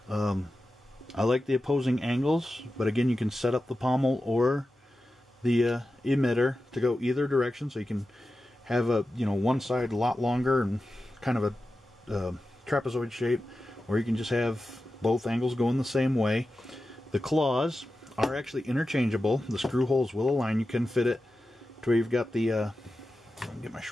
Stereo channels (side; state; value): both; normal; correlation 0.92